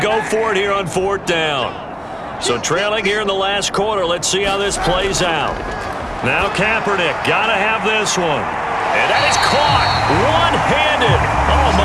go for it here on 4th down. So trailing here in the last quarter, let's see how this plays out. Now Kaepernick, got to have this one. And that is caught one-handed. Oh,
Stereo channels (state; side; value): identical; both; correlation 1.00